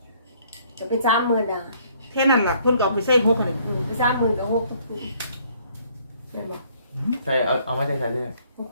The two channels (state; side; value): inverted; both; correlation -0.62